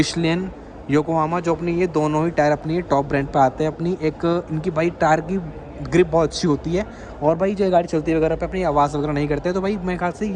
योकोहामा, जो अपनी ये दोनों ही टायर अपनी टॉप ब्रांड पे आते हैं। अपनी एक इनकी भाई टायर की ग्रिप बहुत अच्छी होती है। और भाई जो गाड़ी चलती है वगैरह पे अपनी आवाज़ वगैरह नहीं करते। तो भाई मेरे ख्याल से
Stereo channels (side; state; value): both; identical; correlation 1.00